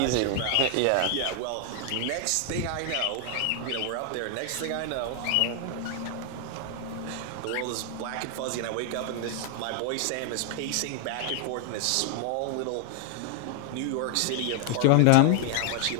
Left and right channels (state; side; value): different; both; correlation 0.00